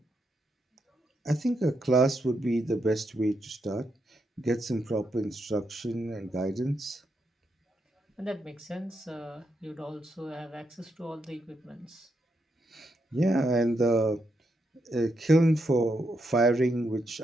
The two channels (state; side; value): normal; both; correlation 0.81